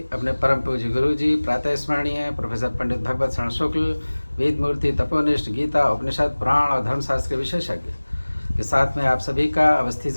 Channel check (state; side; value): inverted; both; correlation -1.00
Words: अपने परम पूज्य गुरु जी प्रातः स्मरणीय प्रोफेसर पंडित भगवत शरण शुक्ल, वेद मूर्ति, तपोनिष्ठ, गीता, उपनिषद, पुराण और धर्मशास्त्र के विशेषज्ञ के साथ में आप सभी का Awasthi